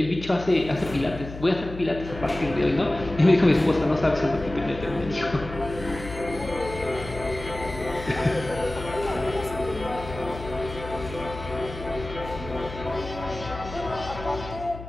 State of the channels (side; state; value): left; noise; hum, 12 dB below the sound